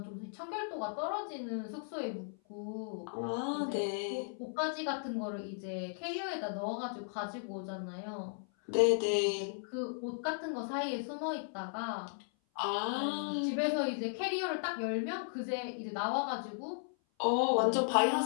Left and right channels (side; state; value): right; silent; 54 dB below the other